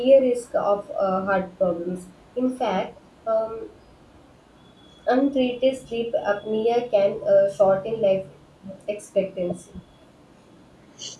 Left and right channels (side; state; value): both; identical; correlation 1.00